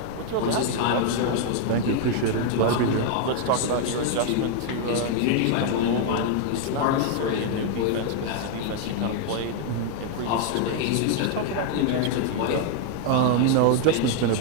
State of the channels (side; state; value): both; different; correlation 0.00